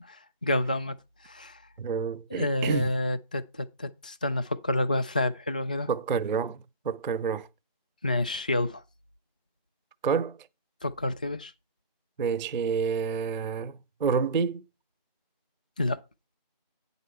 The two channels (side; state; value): both; inverted; correlation -0.40